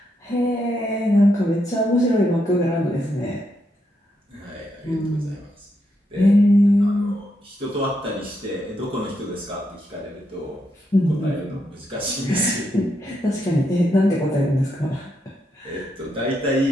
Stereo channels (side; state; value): both; normal; correlation 0.80